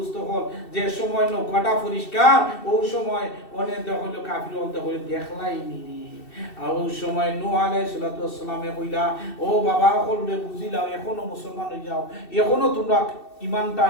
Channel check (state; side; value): late; right; 2.7 ms